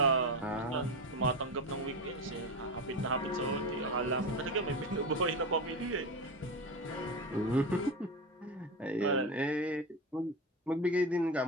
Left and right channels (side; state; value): both; normal; correlation 0.19